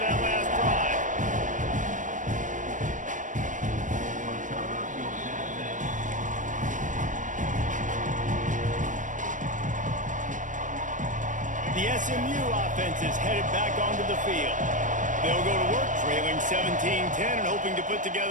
last drive. The SMU offense is headed back onto the field. They'll go to work trailing 17-10 and hoping to put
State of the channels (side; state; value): left; late; 0.37 ms